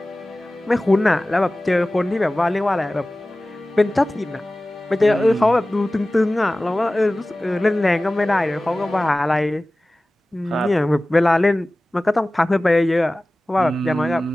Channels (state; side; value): normal; both; correlation 0.97